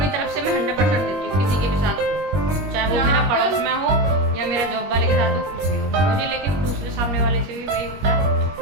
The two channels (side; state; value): left; late; 21 ms